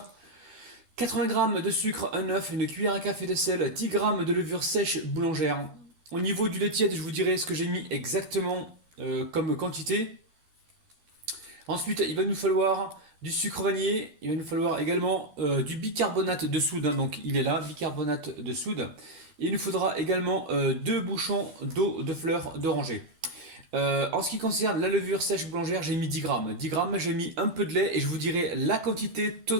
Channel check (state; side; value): late; left; 12 ms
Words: 80 g de sucre, un œuf, une cuillère à café de sel, 10 g de levure sèche boulangère. Au niveau du lait tiède, je vous dirai ce que j'ai mis exactement comme quantité. Ensuite, il va nous falloir du sucre vanillé, il va nous falloir également du bicarbonate de soude, hein, donc il est là, bicarbonate de soude. Et il nous faudra également 2 bouchons d'eau de fleurs d'oranger. En ce qui concerne la levure sèche boulangère, j'ai mis 10 grammes. 10 grammes, j'ai mis un peu de lait et je vous dirai la quantité